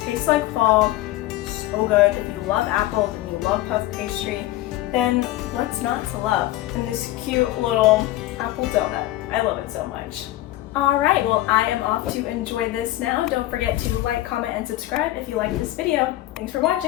Tastes like fall, so good. If you love apples and you love puff pastry, then what's not to love? And this cute little apple donut. I love it so much. All right, well, I am off to enjoy this now. Don't forget to like, comment, and subscribe if you like this video. Thanks for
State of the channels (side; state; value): right; quieter; 15.9 dB